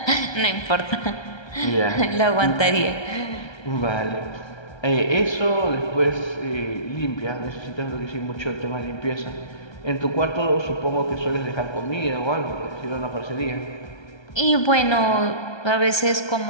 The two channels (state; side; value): late; right; 1.3 ms